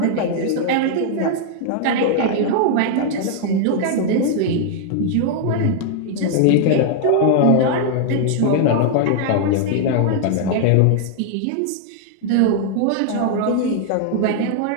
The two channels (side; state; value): both; different; correlation 0.00